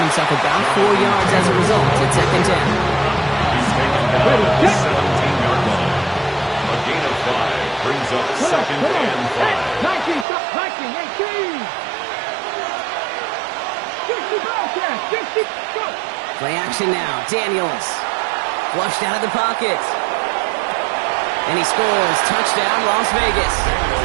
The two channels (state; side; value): drops out; left; at 10.2 s